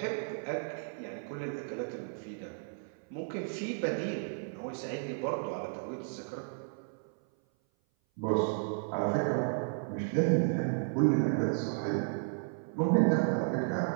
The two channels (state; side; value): silent; left; 55 dB below the other